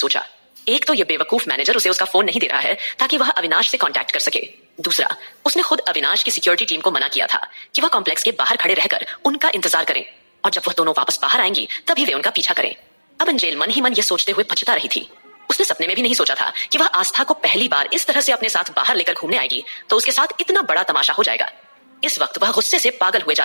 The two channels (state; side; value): inverted; both; correlation -1.00